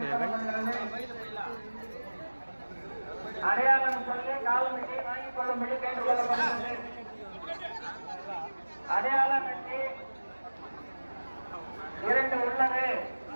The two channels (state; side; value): inverted; both; correlation -1.00